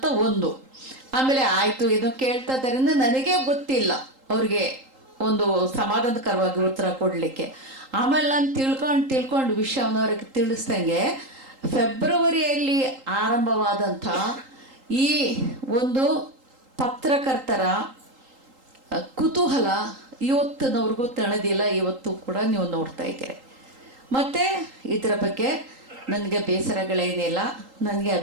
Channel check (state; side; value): late; left; 3.8 ms